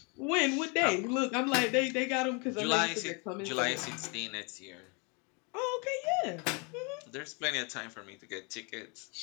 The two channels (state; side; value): quieter; right; 32.3 dB